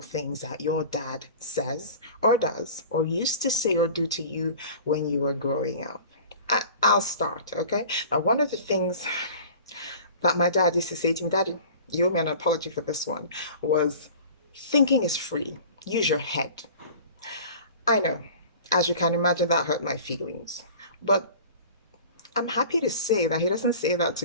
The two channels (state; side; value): inverted; both; correlation -0.41